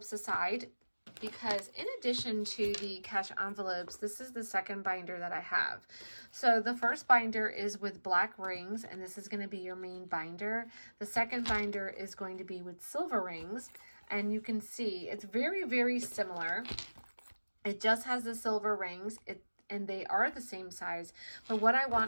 aside because in addition to the cash envelopes, this is the second binder that I have. So the first binder is with black rings, and this is going to be your main binder. The second binder is going to be with silver rings, and you can see it's very, very similar. It just has the silver rings. and they are the same size. But what I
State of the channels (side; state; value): both; inverted; correlation -1.00